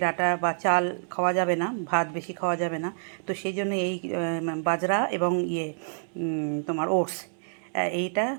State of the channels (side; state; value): left; silent; digital silence